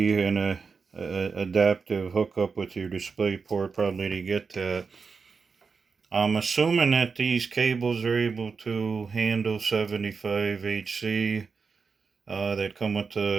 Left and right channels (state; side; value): quieter; left; 5.1 dB